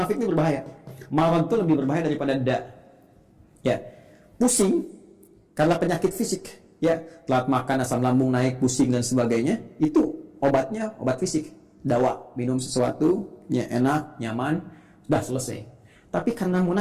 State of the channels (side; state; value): both; identical; correlation 1.00